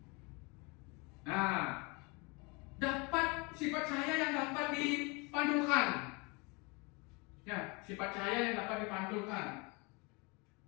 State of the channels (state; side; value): quieter; right; 28.8 dB